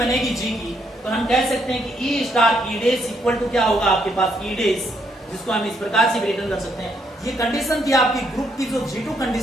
G की, तो हम कह सकते हैं कि E star E does equal to क्या होगा आपके पास, E डेज, जिसको हम इस प्रकार से भी रिटर्न कर सकते हैं। ये कंडीशन थी आपकी ग्रुप की, जो G2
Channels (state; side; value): normal; both; correlation 0.74